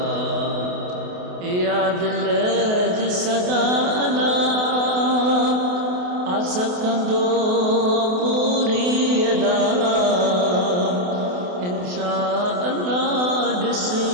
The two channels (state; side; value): late; left; 28 ms